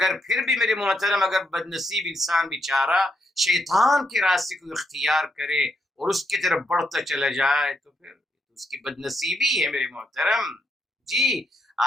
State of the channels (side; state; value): both; normal; correlation 0.79